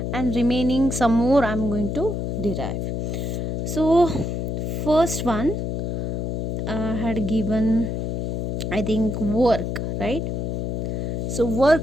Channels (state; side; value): noise; left; hum, 2 dB below the sound